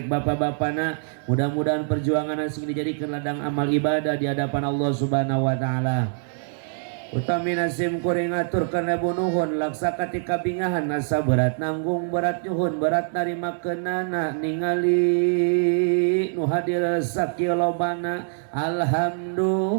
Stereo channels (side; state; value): left; silent; digital silence